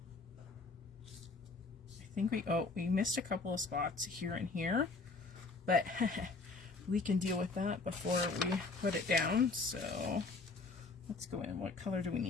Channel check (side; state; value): right; quieter; 3.9 dB